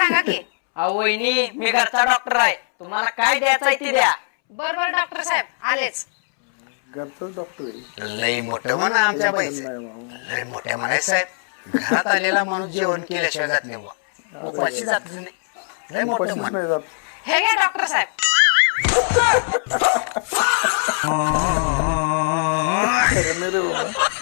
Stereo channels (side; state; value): right; silent; 65 dB below the other